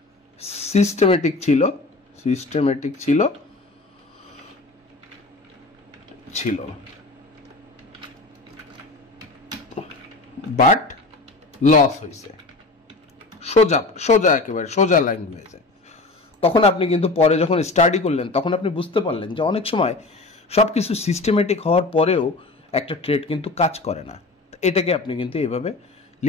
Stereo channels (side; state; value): right; quieter; 3.3 dB